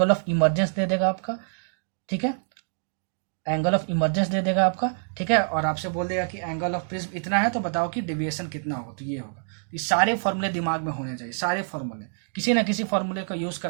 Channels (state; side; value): silent; left; digital silence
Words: ऑफ इमरजेंस दे देगा आपका, ठीक है, एंगल ऑफ इमरजेंस दे देगा आपका, ठीक है। और आपसे बोल देगा कि एंगल ऑफ प्रिज्म इतना है, तो बताओ कि डेविएशन कितना होगा, तो ये होगा। ये सारे फॉर्मूले दिमाग में होने चाहिए, सारे फॉर्मूले, किसी ना किसी फॉर्मूले का यूज